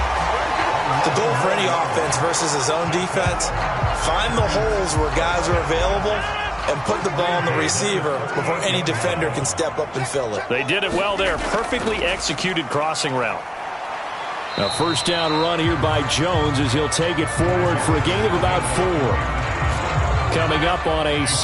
The goal for any offense versus his own defense, find the holes where guys are available and put the ball on the receiver before any defender can step up and fill it. They did it well there. Perfectly executed crossing route. A 1st down run here by Jones as he'll take it forward for a gain of about 4. Coming up on a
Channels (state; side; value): identical; both; correlation 1.00